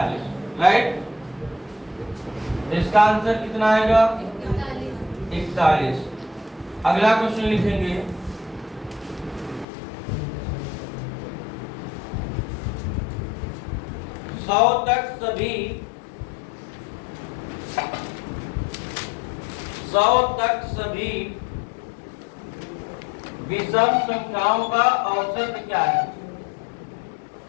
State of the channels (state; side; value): drops out; right; at 9.7 s